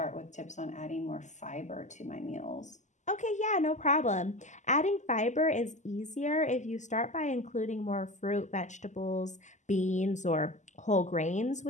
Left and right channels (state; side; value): late; right; 0.34 ms